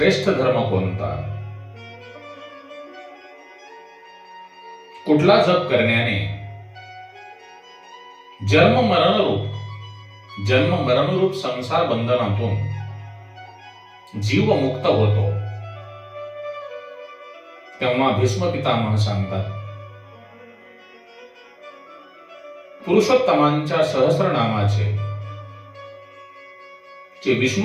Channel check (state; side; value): identical; both; correlation 1.00